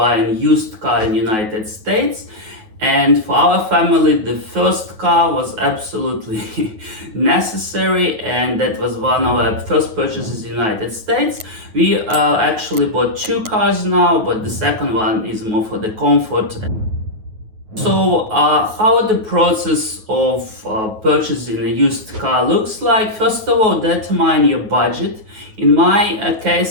used car in United States. And for our family, the first car was absolutely necessary, and that was one of our first purchases in the United States. We actually bought 2 cars now, but the second one is more for the comfort. So how the process of purchasing a used car looks like? First of all, determine your budget. In my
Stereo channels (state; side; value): late; left; 9.3 ms